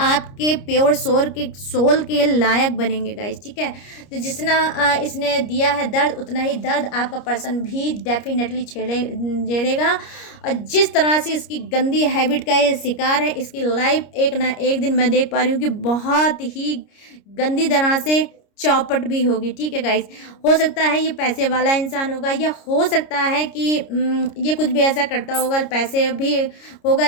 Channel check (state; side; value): late; right; 29 ms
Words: प्योर सोल के लायक बनेंगे गाइस। ठीक है, तो जितना इसने दिया है दर्द, उतना ही दर्द आपका पर्सन भी डेफिनेटली झेलेगा। और जिस तरह से इसकी गंदी हैबिट का ये शिकार है, इसकी लाइफ एक ना एक दिन मैं देख पा रही हूँ कि बहुत ही गंदी तरह से चौपट भी होगी। ठीक है गाइस, हो सकता है ये पैसे वाला इंसान होगा, या हो सकता है कि ये कुछ भी ऐसा करता होगा, पैसे भी होगा,